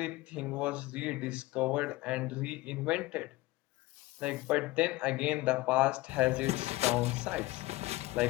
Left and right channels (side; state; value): right; quieter; 19.4 dB